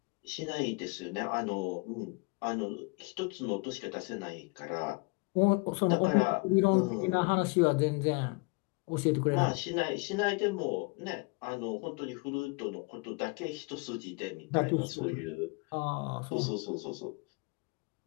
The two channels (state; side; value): quieter; right; 29.9 dB